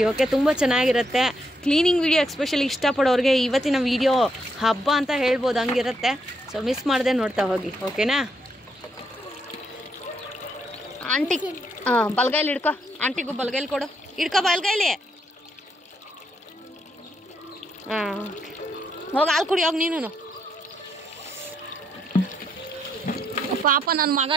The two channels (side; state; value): both; normal; correlation 0.77